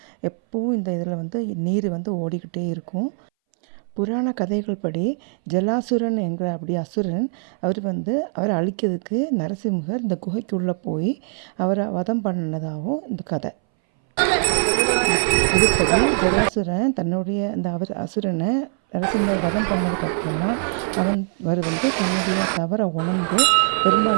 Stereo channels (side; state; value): left; silent; 62 dB below the other